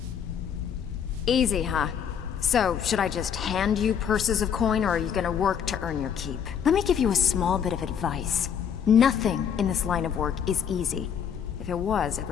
Easy, huh? So, should I just hand you purses of coin, or are you gonna work to earn your keep? Let me give you a small bit of advice. Nothing in this line of work is easy. If it was,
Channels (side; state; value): right; quieter; 8.0 dB